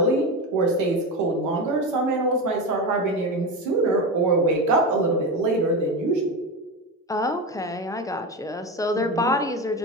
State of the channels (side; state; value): both; normal; correlation 0.20